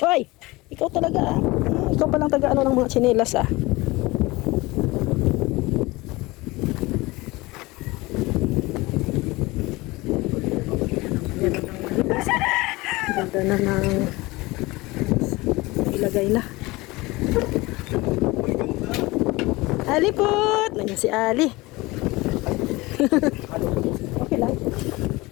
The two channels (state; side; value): quieter; right; 21.8 dB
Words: Ay, ikaw talaga, ah. Ikaw palang taga-ano ng mga tsinelas, ah. Ganda na ng ilagay na. Ali po! Nandiyan si Ali. Okay lang.